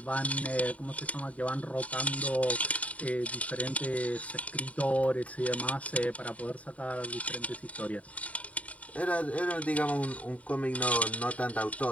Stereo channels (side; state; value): right; late; 0.067 ms